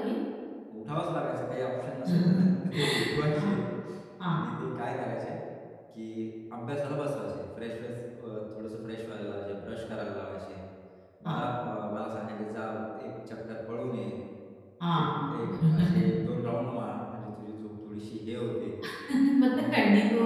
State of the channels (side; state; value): both; identical; correlation 1.00